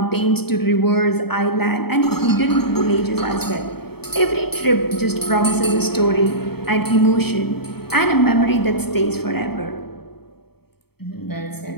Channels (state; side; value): late; right; 0.96 ms